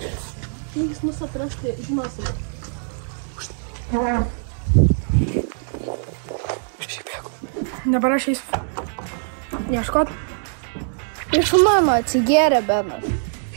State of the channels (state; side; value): silent; left; digital silence